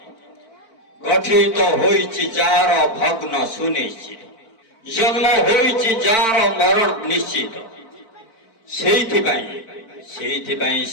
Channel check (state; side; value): late; right; 4.5 ms